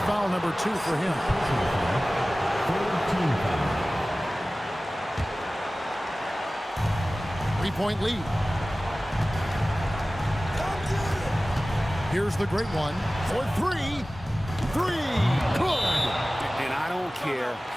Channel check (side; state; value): both; normal; correlation 0.97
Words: number 2 for him. 3-point lead. Here's the great one for 3. 3. Good. And I don't care